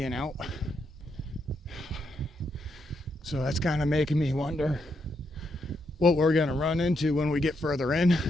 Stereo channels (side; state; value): both; normal; correlation 0.80